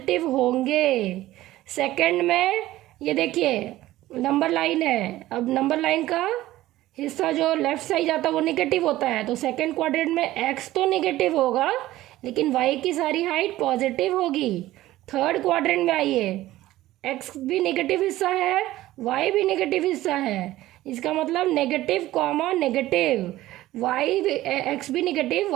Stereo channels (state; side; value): quieter; left; 15.8 dB